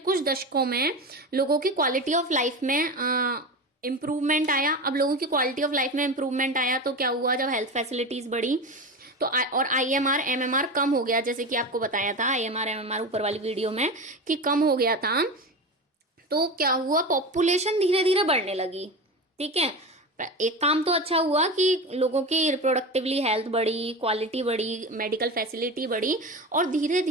दशकों में लोगों की क्वालिटी ऑफ लाइफ में इम्प्रूवमेंट आया। अब लोगों की क्वालिटी ऑफ लाइफ में इम्प्रूवमेंट आया तो क्या हुआ, जब हेल्थ फैसिलिटीज बढ़ी तो और आईएमआर एमएमआर कम हो गया, जैसे कि आपको बताया था आईएमआर एमएमआर ऊपर वाली वीडियो में कि कम हो गया था। तो क्या हुआ, पॉपुलेशन धीरे धीरे बढ़ने लगी, ठीक है। एक काम तो अच्छा हुआ कि लोगों की रिप्रोडक्टिवली हेल्थ बढ़ी, क्वालिटी बढ़ी, मेडिकल फैसिलिटी बढ़ी और धीरे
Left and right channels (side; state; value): both; normal; correlation 0.25